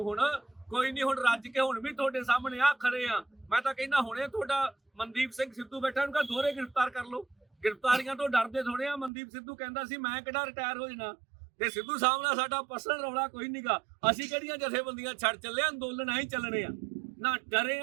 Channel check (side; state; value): left; drops out; at 9.1 s